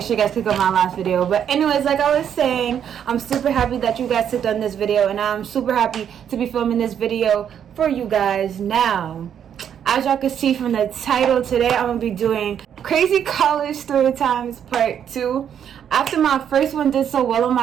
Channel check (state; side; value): quieter; left; 8.8 dB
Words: sure you guys click on my last video. But anyways, like I was saying, I'm super happy that you guys clicked on this video, and I'm super happy to be filming this video for you guys now. As y'all can see from the title, today I'm going to be doing Crazy College Storytimes Part 2. After my first one did so well on